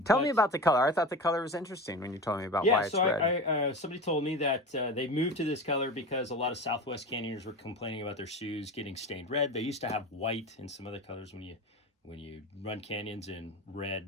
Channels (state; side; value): normal; both; correlation 0.28